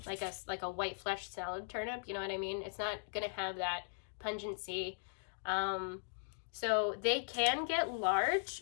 like a white flesh salad turnip, you know what I mean? It's not going to have that pungency. So they can get large,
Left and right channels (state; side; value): silent; right; digital silence